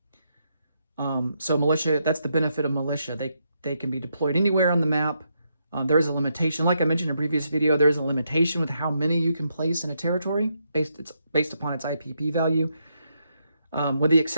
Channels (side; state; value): both; inverted; correlation -0.80